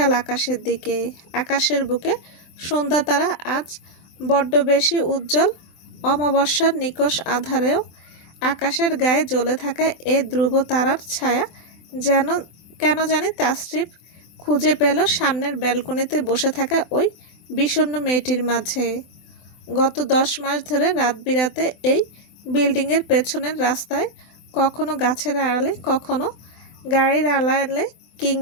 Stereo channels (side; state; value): right; late; 24 ms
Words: আকাশের দিকে। আকাশের বুকে সন্ধ্যা তারা আজ বড্ড বেশি উজ্জ্বল। অমাবস্যার নিকষ আধারেও আকাশের গায়ে জ্বলে থাকা এ ধ্রুব তারার ছায়া কেন জানি তাসরিফ খুঁজে পেল সামনের ব্যালকনিতে বসে থাকা ওই বিষণ্ণ মেয়েটির মাঝে। গত 10 মাস ধরে রাত বিরাতে এই বিল্ডিংয়ের পেছনের রাস্তায় কখনো গাছের আড়ালে, কখনো গাড়ির আড়ালে